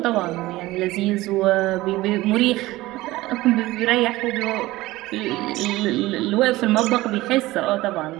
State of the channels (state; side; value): quieter; left; 18.4 dB